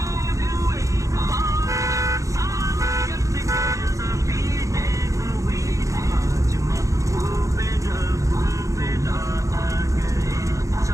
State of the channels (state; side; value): late; left; 0.15 ms